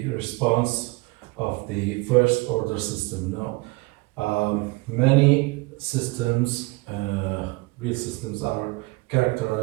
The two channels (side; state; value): left; quieter; 24.5 dB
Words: response of the first order system. Now, many systems, real systems, are